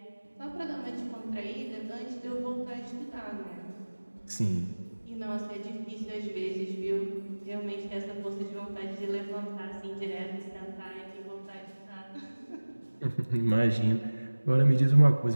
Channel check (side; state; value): both; inverted; correlation -1.00